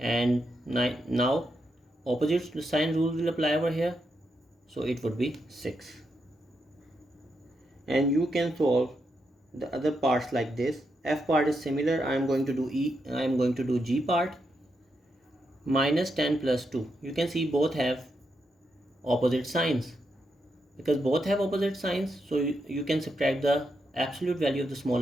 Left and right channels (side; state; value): both; normal; correlation 0.83